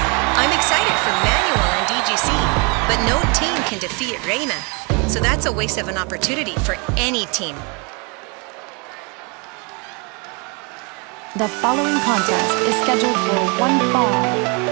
excited for Manuel and DGC, but no team can defeat Reina. So that's a waste of an opportunity for any team. The following contest is scheduled for one fall.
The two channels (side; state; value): left; quieter; 32.4 dB